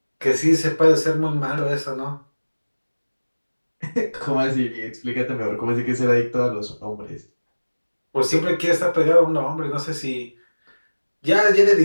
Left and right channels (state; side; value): inverted; both; correlation -1.00